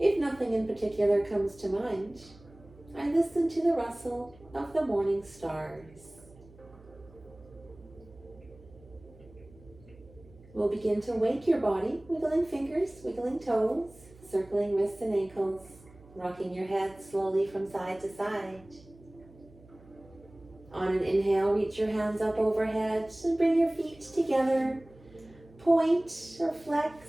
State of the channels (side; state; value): right; noise; hum, 23 dB below the sound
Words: nothing in particular comes to mind, I listen to the rustle of the morning stars. We'll begin to wake your body, wiggling fingers, wiggling toes, circling wrists and ankles, rocking your head slowly from side to side. On an inhale, reach your hands up overhead and bring your feet together. Point or flex,